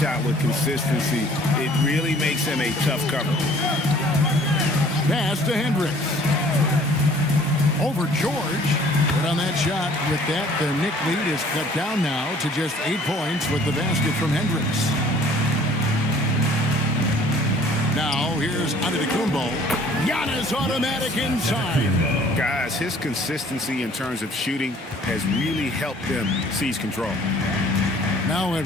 with consistency, it really makes him a tough cover. Pass to Hendricks. Over George. But on that shot, with that, the Knick lead is cut down now to just 8 points with the basket from Hendricks. Now, here's Antetokounmpo. Giannis automatic inside. Guys, his consistency in terms of shooting has really helped them seize control. Now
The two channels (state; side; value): normal; both; correlation 0.54